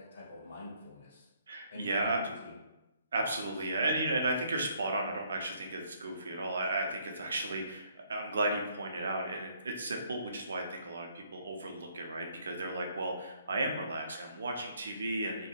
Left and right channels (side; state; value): both; inverted; correlation -0.67